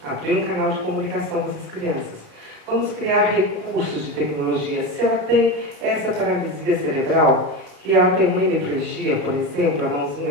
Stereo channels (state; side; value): late; left; 28 ms